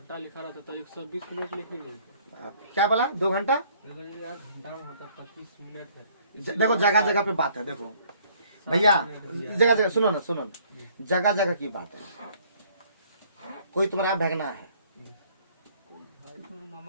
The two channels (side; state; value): both; inverted; correlation -0.60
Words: लिखा रहता तो 120 मिनट लिखेंगे। क्या बोला 2 घंटा? यार घंटा में होता 25 मिनट है। देखो जगह जगह पे बात है, देखो भैया जगह जगह सुनो ना, जगह जगह की बात है। कोई तुम्हारा भगना है,